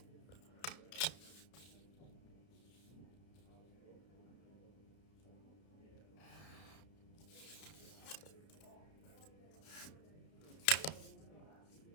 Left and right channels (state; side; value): late; right; 32 ms